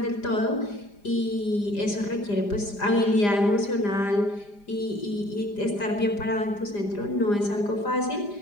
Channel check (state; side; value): late; right; 4.9 ms